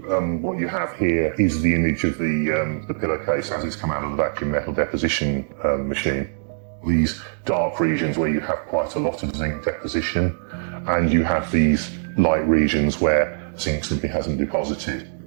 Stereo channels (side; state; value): left; silent; digital silence